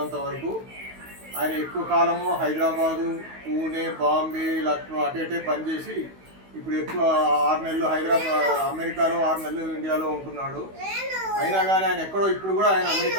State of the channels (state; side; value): late; left; 16 ms